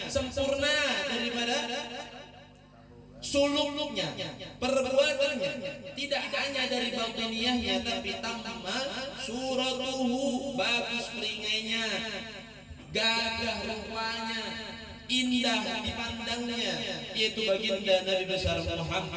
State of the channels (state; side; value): identical; both; correlation 1.00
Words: sempurna daripada suluknya, perbuatannya, tidak hanya dari batiniyahnya tapi tamma suratuhu, bagus peringainya, gagah rupanya, indah dipandangnya, yaitu baginda Nabi besar